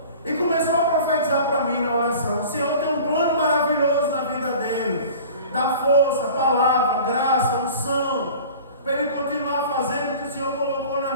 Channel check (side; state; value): both; inverted; correlation -0.42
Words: E começou a profetizar para mim na oração. O Senhor tem um plano maravilhoso na vida dele. Dá força, palavra, graça, unção, para ele continuar fazendo o que o Senhor colocou na